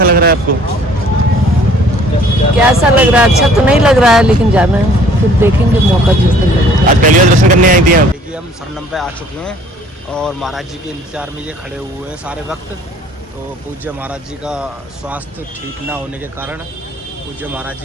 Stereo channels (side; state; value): both; normal; correlation 0.55